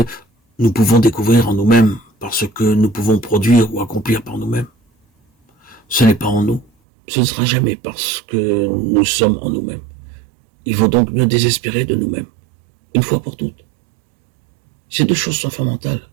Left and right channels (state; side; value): drops out; left; at 6.7 s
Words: nous pouvons découvrir en nous-mêmes par ce que nous pouvons produire ou accomplir par nous-mêmes. Ce n'est pas en nous. Ce ne sera jamais parce que nous sommes en nous-mêmes. Il vaut donc mieux désespérer de nous-mêmes, une fois pour toutes. Ces deux choses sont fondamentales.